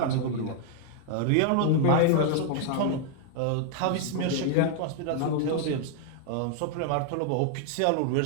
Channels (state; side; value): different; both; correlation 0.00